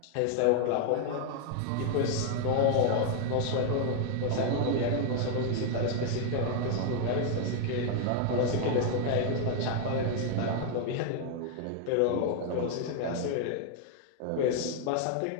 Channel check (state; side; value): different; both; correlation 0.00